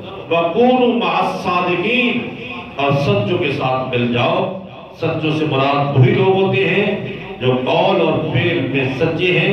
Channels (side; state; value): both; identical; correlation 1.00